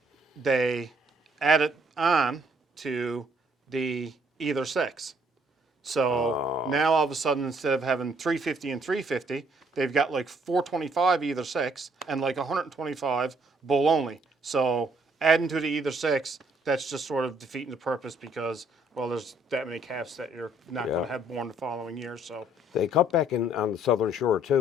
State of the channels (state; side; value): normal; both; correlation 0.66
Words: they added on to the either sex. So now all of a sudden, instead of having 350 and 350, they've got like 425 either sex and like 125 bull only. So adding to the either sex, that's just sort of defeating the purpose because, well, there's that many calves that you're not going to have born the following year. So They cut back on the southern shore